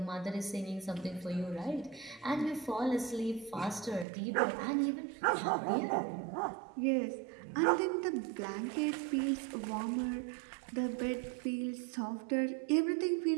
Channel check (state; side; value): drops out; left; at 4.0 s